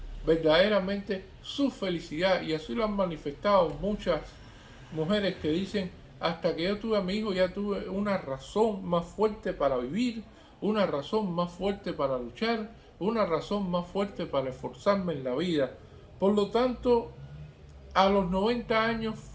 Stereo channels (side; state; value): both; identical; correlation 1.00